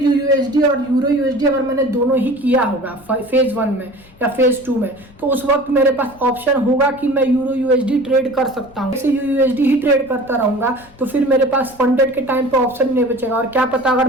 और यूरो यूएसडी अगर मैंने दोनों ही किया होगा फेज 1 में या फेज 2 में, तो उस वक्त मेरे पास ऑप्शन होगा कि मैं यूरो यूएसडी ट्रेड कर सकता हूँ। XAUUSD ही ट्रेड करता रहूंगा, तो फिर मेरे पास फंडेड के टाइम पे ऑप्शन नहीं बचेगा। और क्या पता अगर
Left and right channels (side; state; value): left; noise; rumble, 27 dB below the sound